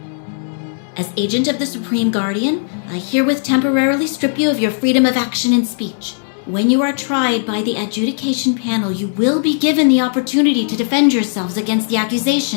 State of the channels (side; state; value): right; silent; 68 dB below the other